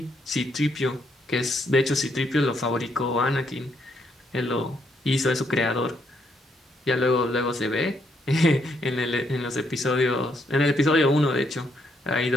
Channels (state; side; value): normal; both; correlation 0.75